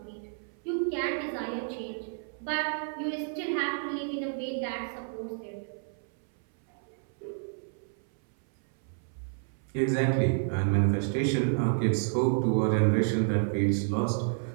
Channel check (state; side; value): silent; left; 58 dB below the other